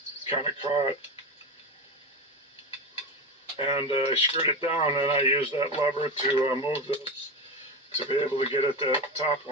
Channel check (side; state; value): both; normal; correlation 0.20